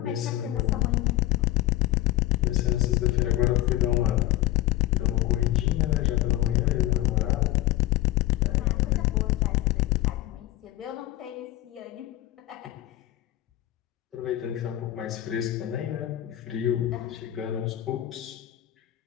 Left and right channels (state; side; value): quieter; right; 14.8 dB